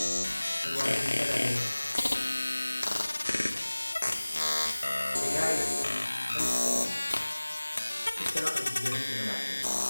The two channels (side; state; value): both; inverted; correlation -1.00